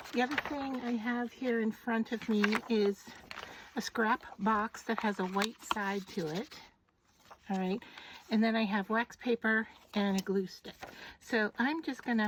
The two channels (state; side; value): identical; both; correlation 1.00